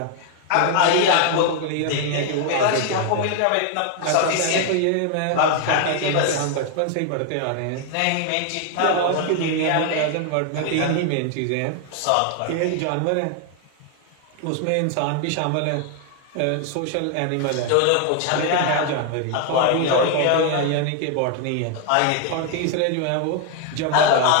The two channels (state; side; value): different; both; correlation 0.00